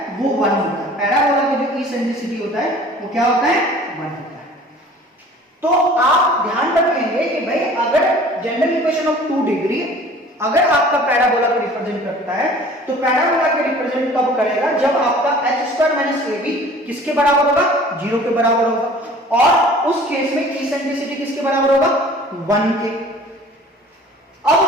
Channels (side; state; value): both; normal; correlation 0.48